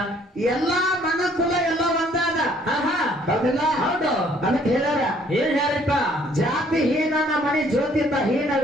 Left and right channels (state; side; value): normal; both; correlation 0.61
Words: ಎಲ್ಲಾ ಮನಕುಲ ಎಲ್ಲ ಒಂದಾದ. ಹೌದಿಲ್ಲ? ಹೌದು. ಅದಕ್ಕೆ ಹೇಳ್ಯಾರ, ಏನ್ ಹೇಳ್ರಿಪ್ಪ? ಜಾತಿ ಹೀನನ ಮಣಿ ಜ್ಯೋತಿತ